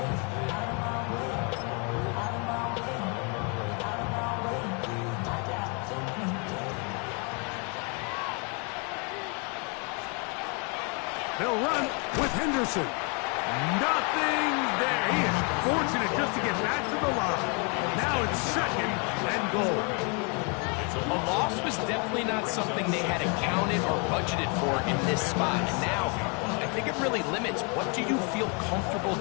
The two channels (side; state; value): right; quieter; 34.8 dB